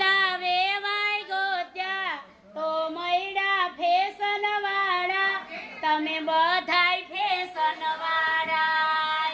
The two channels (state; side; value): identical; both; correlation 1.00